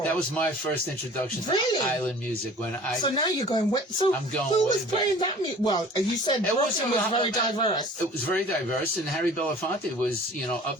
That was my first introduction Really? to island music. When I So now you're going, so I'm going who way was back. playing that music? Well, you said It was Brooklyn was very diverse. It was very diverse, and Harry Belafonte was, up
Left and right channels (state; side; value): normal; both; correlation 0.46